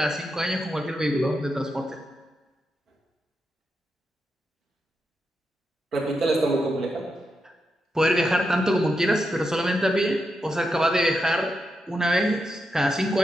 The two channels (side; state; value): both; normal; correlation 0.86